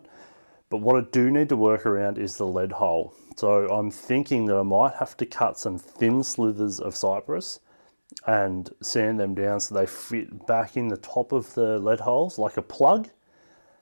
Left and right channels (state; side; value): inverted; both; correlation -1.00